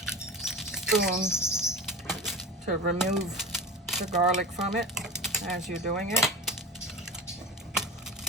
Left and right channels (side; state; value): both; normal; correlation 0.29